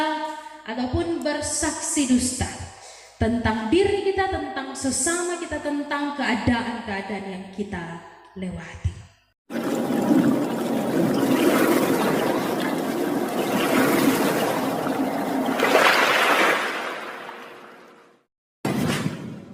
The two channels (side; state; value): both; identical; correlation 1.00